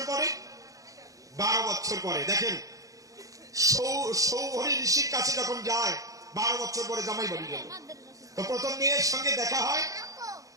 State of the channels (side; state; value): left; late; 0.17 ms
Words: পরে? ১২ বছর পরে। দেখেন, সৌভরী ঋষির কাছে যখন যায় ১২ বছর পরে জামাই বাড়ি গেল, তো প্রথম মেয়ের সঙ্গে দেখা হয়।